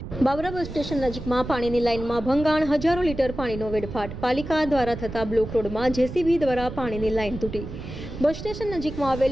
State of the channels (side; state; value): right; noise; rumble, 10 dB below the sound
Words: Babra bus station નજીકમાં પાણીની લાઇનમાં ભંગાણ, હજારો લીટર પાણીનો વેડફાટ. પાલિકા દ્વારા થતા બ્લોક રોડમાં જેસીબી દ્વારા પાણીની લાઇન તૂટી. બસ સ્ટેશન નજીકમાં